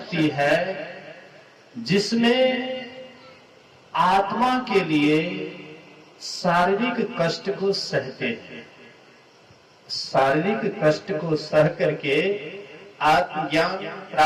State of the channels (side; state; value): both; identical; correlation 1.00